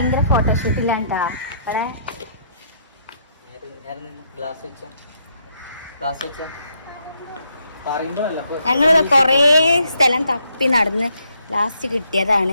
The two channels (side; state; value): both; inverted; correlation -0.73